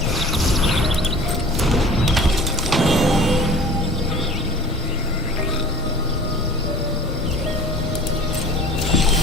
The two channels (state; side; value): normal; both; correlation 0.43